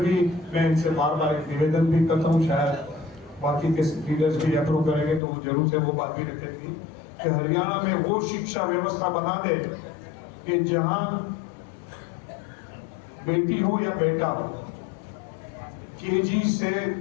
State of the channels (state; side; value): drops out; right; at 5.2 s